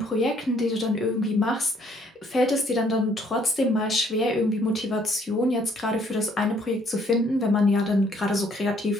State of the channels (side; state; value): both; normal; correlation 0.64